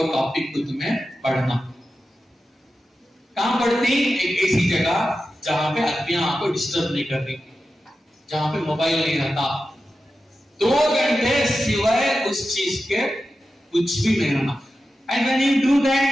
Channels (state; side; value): normal; both; correlation 0.92